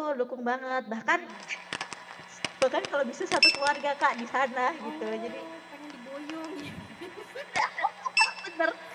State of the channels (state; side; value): identical; both; correlation 1.00